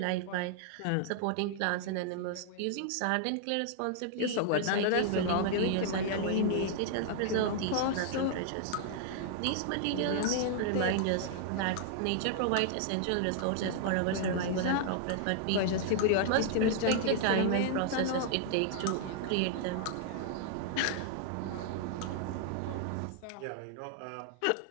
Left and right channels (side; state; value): both; different; correlation -0.01